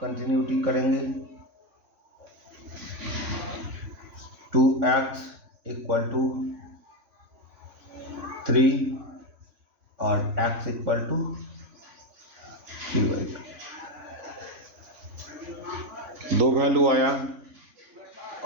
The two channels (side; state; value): left; late; 3.5 ms